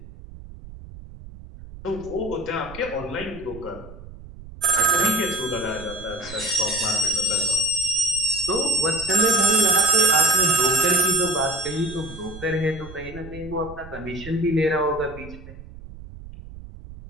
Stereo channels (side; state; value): right; noise; rumble, 16 dB below the sound